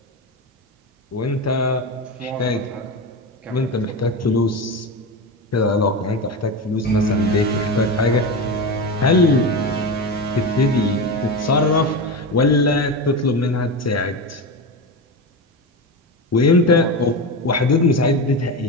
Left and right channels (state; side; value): normal; both; correlation 0.20